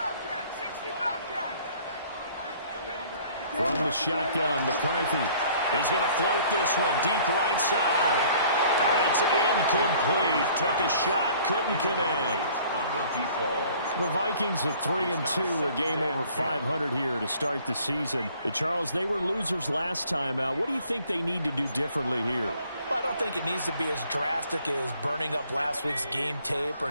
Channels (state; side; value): inverted; both; correlation -0.55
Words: From the shotgun, McCarthy. He's going to float this one deep right side. And it's incomplete. Took a shot, couldn't connect. The Vikings at 3-2, a game over 500 here to start the season. Charles, they were losers last time out. What do you think they need to do differently here? Well, I don't think it needs to be as drastic as burning up last week's game tape or